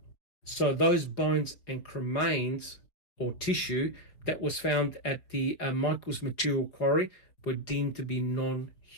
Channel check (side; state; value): right; late; 4.7 ms